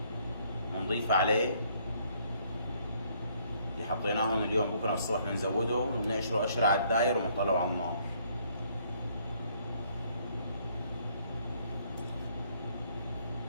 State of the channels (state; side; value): inverted; both; correlation -0.66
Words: ونضيف عليه اللي حطيناهم اليوم. بكره الصبح بنزوده وبنقشره قشره على الداير ونطلعه على النار.